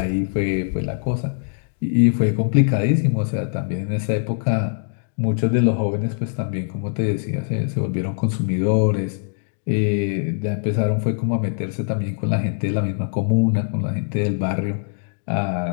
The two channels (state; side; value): silent; right; digital silence